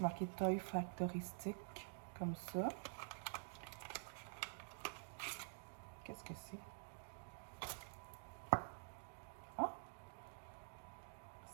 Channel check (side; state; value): left; silent; digital silence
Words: Toy Factory Stick, comme ça. Qu'est-ce que c'est? Ah!